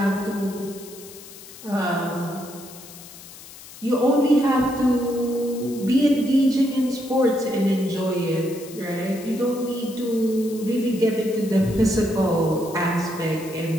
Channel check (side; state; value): left; noise; hiss, 17 dB below the sound